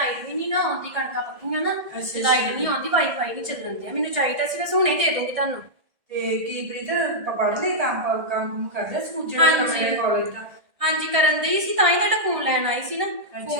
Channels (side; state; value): left; late; 1.6 ms